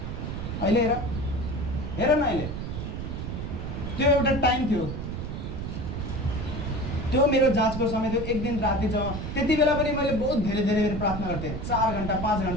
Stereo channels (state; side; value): noise; right; rumble, 5 dB below the sound